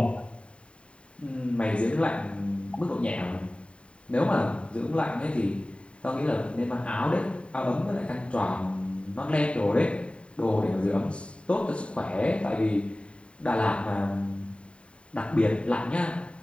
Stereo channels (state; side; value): late; right; 0.058 ms